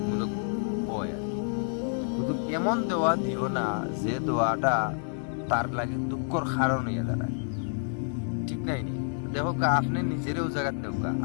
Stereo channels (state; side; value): silent; right; digital silence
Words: হয়। কিন্তু এমন দেওয়া দিও না যে দেওয়াটা তার লাগে দুঃখর কারণ হইয়া দাঁড়ায়, ঠিক নাই নি? দেখো আপনি নিজেরও জায়গাত নেও,